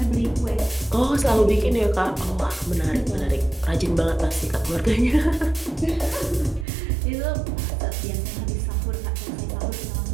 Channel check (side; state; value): left; drops out; at 6.7 s